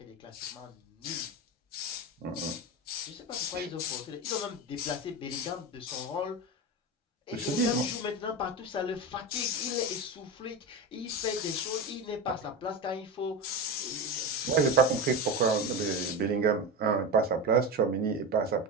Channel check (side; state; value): both; normal; correlation 0.21